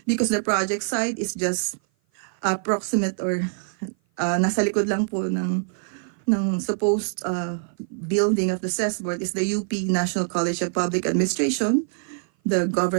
because the project site is just approximate or nasa likod lang po ng supposed building of the SES board is the UP National College of Public Administration, the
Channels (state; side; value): silent; left; 56 dB below the other